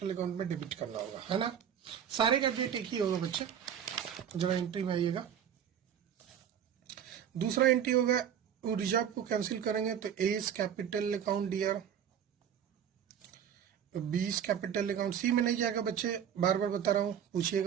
अकाउंट में डेबिट करना होगा, है ना? सारे का डेट एक ही होगा बच्चे। जरा एंट्री में आइएगा। दूसरा एंट्री होगा, वो रिजर्व को कैंसिल करेंगे तो A is capital account dear, B is capital account. C में नहीं जाएगा बच्चे, बार बार बता रहा हूं,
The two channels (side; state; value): left; quieter; 8.9 dB